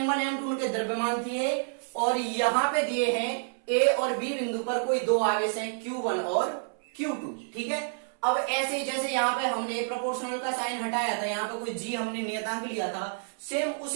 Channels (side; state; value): left; silent; 59 dB below the other